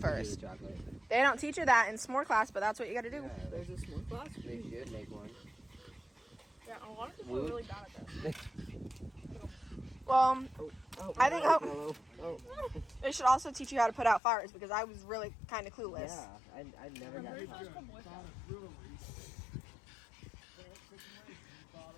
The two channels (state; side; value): drops out; right; at 14.2 s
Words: Chocolate. They don't teach you that in s'more class, but that's what you got to do. Yeah, there's a s'more class? They should make one. Yeah, a lot of people are really bad at this. Well, I think they should also teach you how to put out fires because I was really kind of clueless. Yeah, I never got that.